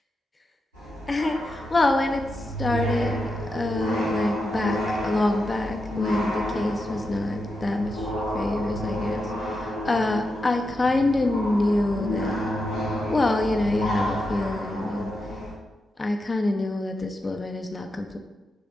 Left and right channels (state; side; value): normal; both; correlation 0.87